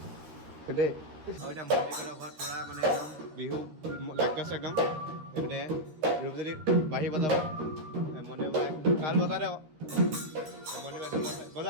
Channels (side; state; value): left; late; 13 ms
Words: দেই। আৰু এতিয়া মন্দিৰৰ ঘৰত পূৰা মানে একদম বিহু লাগি আছে একদম। এইপিনে ৰূপজ্যোতি বাঢ়ি বজাব, মন্দিৰ বজাই তাল বজা দে আকৌ, মন্দিৰ